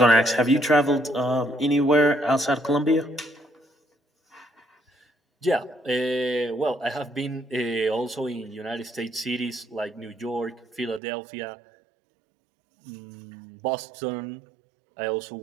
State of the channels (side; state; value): left; drops out; at 11.0 s